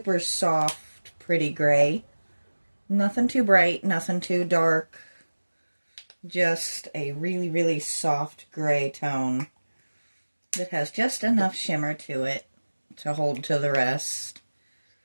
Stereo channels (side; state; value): both; inverted; correlation -1.00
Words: soft, pretty gray. Nothing too bright, nothing too dark. Just a really soft gray tone that has just enough shimmer to it to hold to the rest.